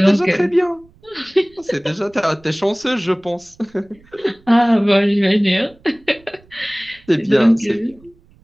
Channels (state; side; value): noise; right; rumble, 29 dB below the sound